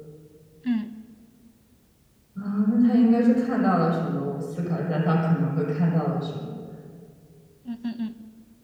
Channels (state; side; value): identical; both; correlation 1.00